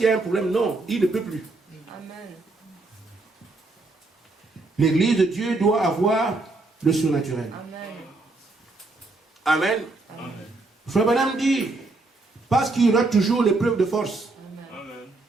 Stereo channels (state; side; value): quieter; left; 3.2 dB